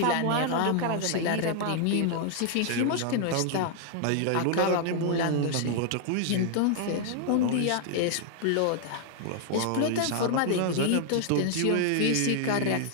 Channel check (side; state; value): both; different; correlation 0.00